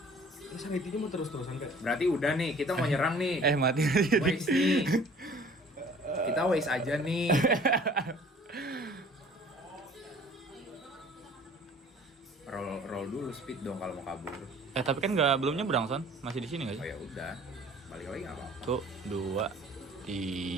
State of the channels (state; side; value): normal; both; correlation 0.50